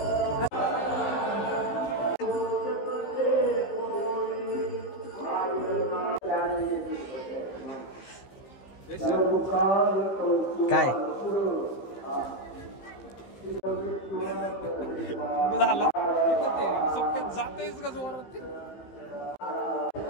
काय झालं जातेच का जोरात.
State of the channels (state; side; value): late; right; 15 ms